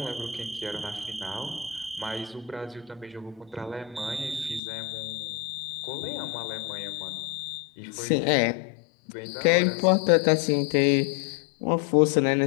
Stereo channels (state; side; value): drops out; right; at 4.6 s